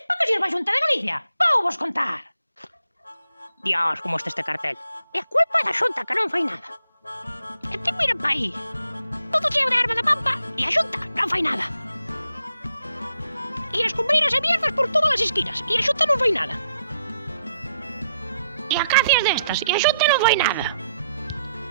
para que sirve a Xunta de Galicia. Vou vos contar. Dios, como este cartel. E a culpa é da Xunta que non fai nada. E ti miren pa aí. Todo cheo de erva da pampa e a Xunta non fai nada. E as cumbreiras e mierdas por todas as esquinas e a Xunta non fai nada. E acacias destas e a Xunta non fai nada.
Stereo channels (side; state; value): both; inverted; correlation -0.77